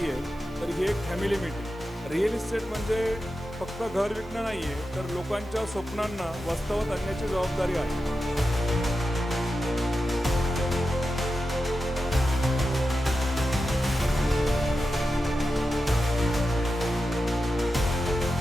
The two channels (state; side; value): normal; both; correlation 0.91